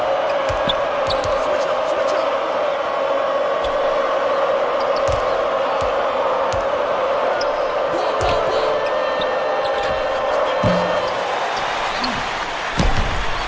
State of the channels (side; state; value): both; identical; correlation 1.00